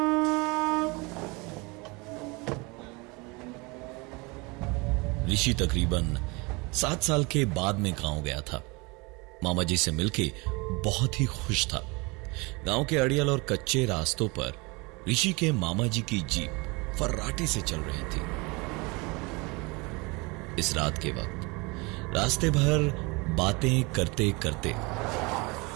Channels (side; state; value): left; quieter; 26.9 dB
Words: ऋषि तकरीबन 7 साल के बाद में गांव गया था। मामा जी से मिलके बहुत ही खुश था। गांव के अड़ियल और कच्चे रास्तों पर ऋषि के मामा जी की जीप फर्राटे से चल रही थी। इस रात के वक्त रास्ते भर बातें करते करते